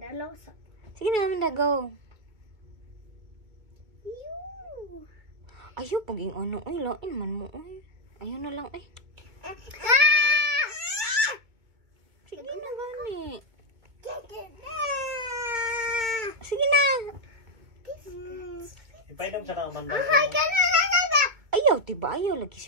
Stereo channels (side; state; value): left; late; 2.2 ms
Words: sa. Sige na, Amanda, go. Yoo. Ayaw, paging ano. Ay, lain man mo. Ay. Ayaw na lang, ay. Sige na, gani. Sige na. Ipainom siya ng Amanda. Hi, kanana. Ayaw, diba? Ayaw, lagi